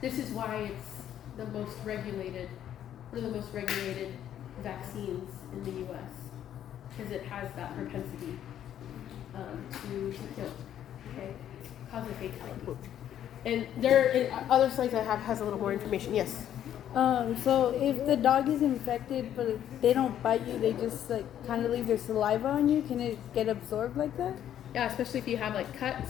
This is why it's the most regulated, one of the most regulated vaccines in the U.S. because it has that propensity to kill. Okay, cause a fatality. And other slides I have has a little more information. Yes. So if the dog is infected but they don't bite you, they just like kind of leave their saliva on you, can it get absorbed like that? Yeah, especially if you have like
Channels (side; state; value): right; quieter; 10.6 dB